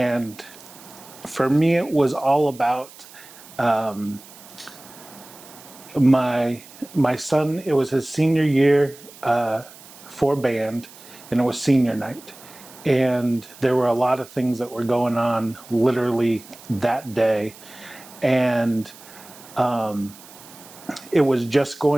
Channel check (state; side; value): noise; right; hiss, 20 dB below the sound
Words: for me, it was all about my son. It was his senior year for band, and it was senior night. And there were a lot of things that were going on literally that day. And it was just